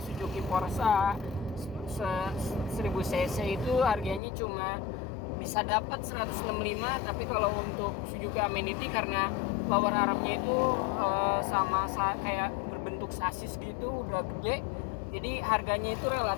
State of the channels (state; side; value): drops out; right; at 4.2 s